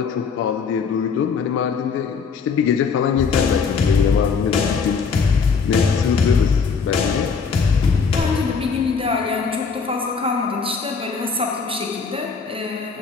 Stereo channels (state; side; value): quieter; right; 5.4 dB